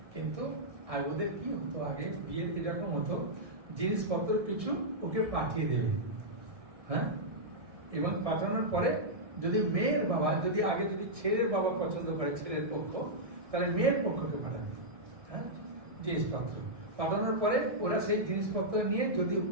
কিন্তু আর ওদের কি হতো, আগে বিয়ের এরকম হতো জিনিসপত্র কিছু ওকে পাঠিয়ে দেবে। হ্যাঁ, এবং পাঠানোর পরে যদি মেয়ের বাবা যদি আগে যদি ছেলের বাবা পছন্দ করে ছেলের পক্ষ, তাহলে মেয়ের পক্ষকে পাঠাবে। হ্যাঁ, জিনিসপত্র পাঠানোর পরে ওরা সেই জিনিসপত্র নিয়ে যদি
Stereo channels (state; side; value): late; left; 1.6 ms